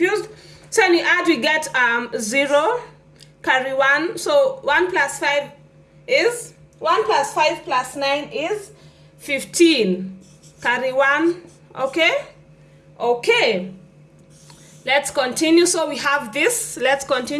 So when we add, we get 0, carry 1. So 1 plus 5 is, 1 plus 5 plus 9 is 15. Carry 1, okay? Okay. Let's continue. So we have this. Let's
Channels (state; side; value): identical; both; correlation 1.00